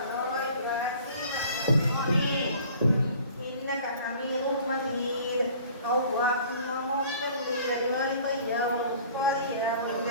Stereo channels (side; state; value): both; inverted; correlation -0.49